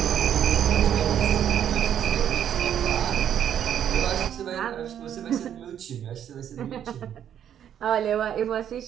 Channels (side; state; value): left; quieter; 9.6 dB